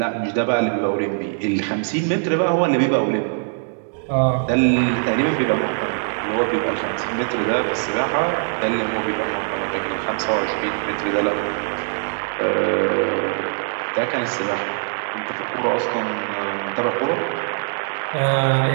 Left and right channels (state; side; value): silent; left; digital silence